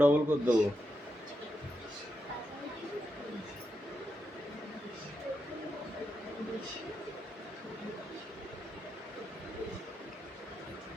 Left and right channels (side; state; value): both; normal; correlation 0.84